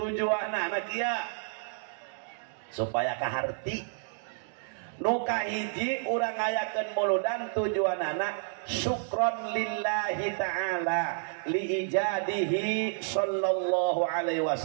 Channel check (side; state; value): left; silent; digital silence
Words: kieu supaya kaharti nuka hiji urang ngayakeun muludan tujuanana syukron lillahi ta'ala li ijadihi sallallahu alaihi